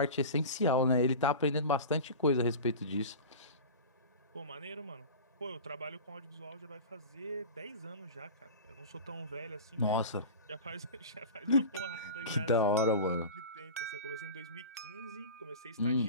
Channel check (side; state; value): both; inverted; correlation -0.32